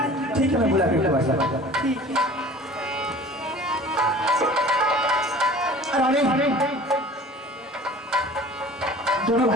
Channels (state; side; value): normal; both; correlation 0.45